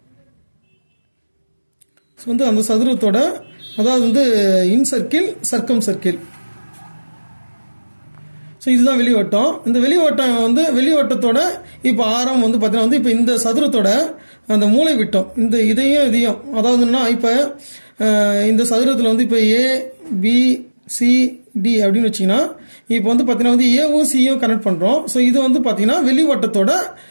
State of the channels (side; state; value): both; inverted; correlation -1.00